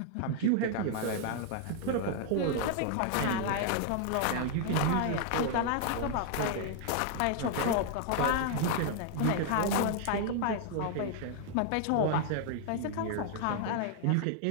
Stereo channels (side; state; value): both; different; correlation 0.00